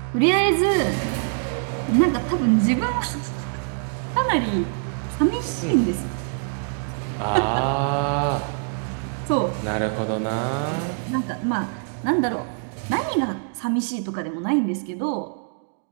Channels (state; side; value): silent; left; 63 dB below the other